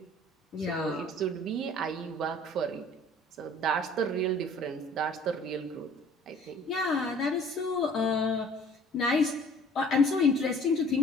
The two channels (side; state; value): both; normal; correlation 0.52